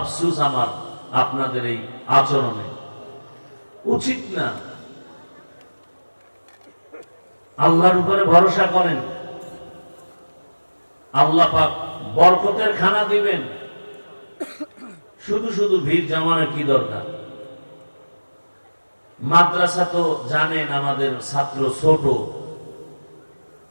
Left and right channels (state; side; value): inverted; both; correlation -1.00